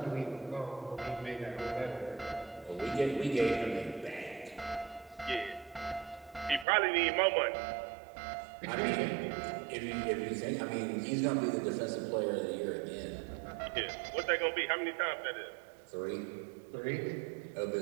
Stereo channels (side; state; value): left; drops out; at 6.7 s